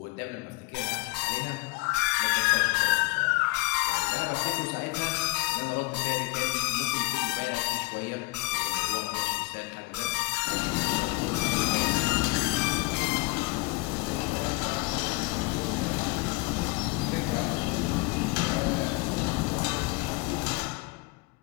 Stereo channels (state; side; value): quieter; right; 23.5 dB